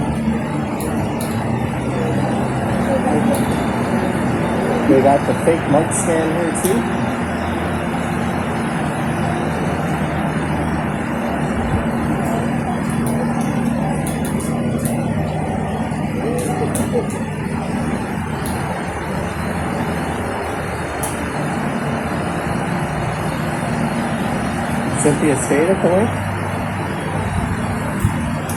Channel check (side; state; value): both; identical; correlation 1.00